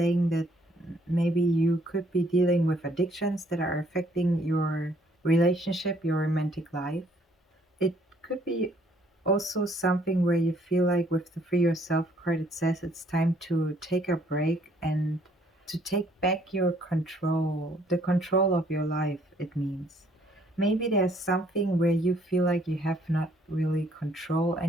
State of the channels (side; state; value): both; normal; correlation 0.64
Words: that maybe you could be dealing with addictions that are affecting your relationship, your romantic life. It could be also something where you feel like with the free yourself card, it says it's time to take a break and to take back your control, the control of your life, it means. Maybe there's something where you feel like you have not really control